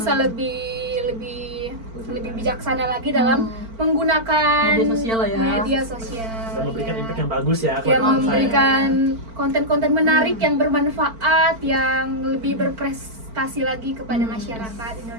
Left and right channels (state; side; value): late; left; 4.5 ms